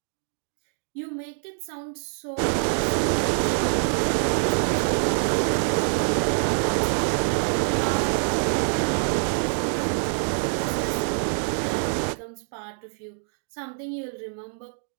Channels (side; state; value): left; silent; 58 dB below the other